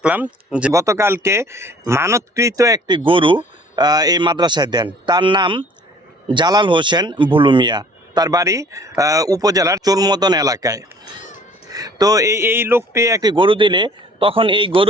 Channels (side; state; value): both; normal; correlation 0.53